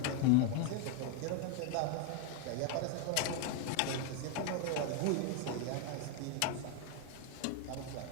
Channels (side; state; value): both; different; correlation 0.01